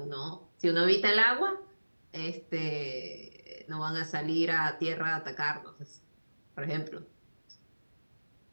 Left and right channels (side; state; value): both; inverted; correlation -1.00